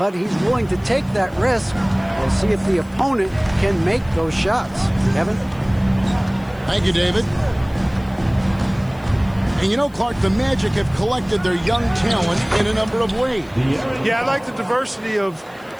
he's willing to take that risk. We'll see if the opponent can make those shots. Kevin? Thank you, David. And you know, Clark, the Magic have collected their young talent in a number of ways. Yeah, I like the diversity of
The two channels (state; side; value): noise; left; hiss, 29 dB below the sound